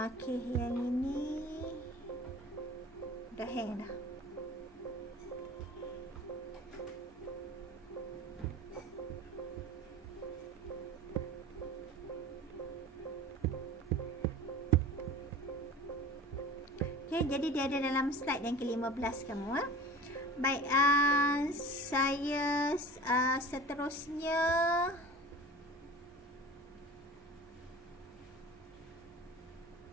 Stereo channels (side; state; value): both; normal; correlation 0.38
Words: yang ini dah hang dah. Okey, jadi dia ada dalam slide yang ke-15 kamu. Baik, saya seterusnya